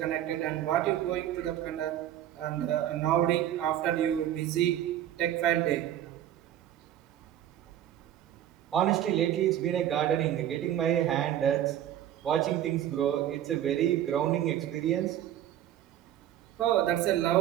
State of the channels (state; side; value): quieter; left; 11.6 dB